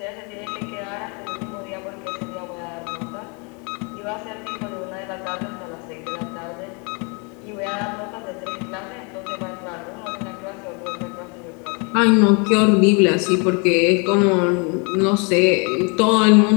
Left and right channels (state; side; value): quieter; right; 33.4 dB